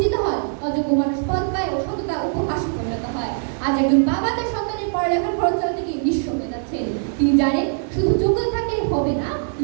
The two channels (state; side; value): silent; left; digital silence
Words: হয়, অযোগ্য মানুষ পদ পায় ও সততা উপহাসে পরিণত হয়। আজ একজন বাবা তার সন্তানের পড়ালেখার খরচ চালাতে গিয়ে নিঃস্ব হয়ে যাচ্ছেন। তিনি জানেন শুধু যোগ্যতা থাকলে হবে না,